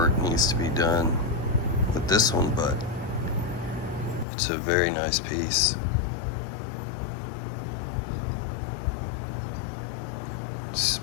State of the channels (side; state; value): right; drops out; at 4.2 s